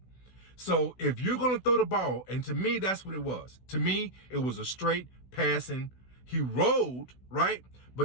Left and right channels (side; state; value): right; late; 16 ms